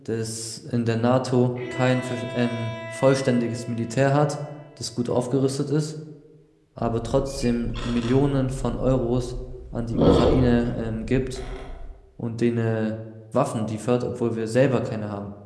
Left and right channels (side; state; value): both; identical; correlation 1.00